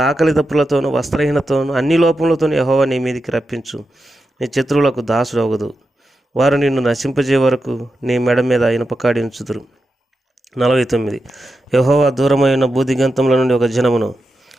ఆకలి దప్పులతోనూ వస్త్రహీనతోనూ అన్ని లోపములతోనూ యెహోవా నీ మీదికి రప్పించు. నీ శత్రువులకు దాసుడు అవ్వదు. వారు నిన్ను నశింపజే వరకు నీ మెడ మీద ఇనుపకాడి ఉంచుదురు. 49, యెహోవా దూరమైన భూదిగంతముల నుండి ఒక జనమును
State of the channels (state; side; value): normal; both; correlation 0.89